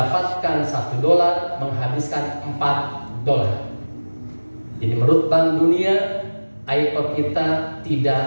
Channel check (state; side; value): inverted; both; correlation -1.00